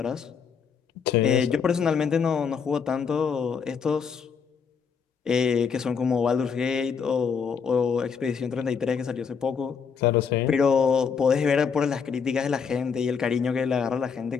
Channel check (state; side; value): quieter; right; 6.2 dB